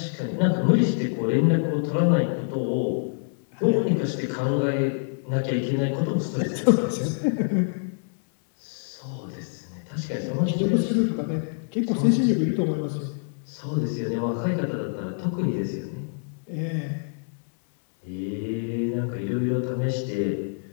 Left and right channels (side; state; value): right; silent; digital silence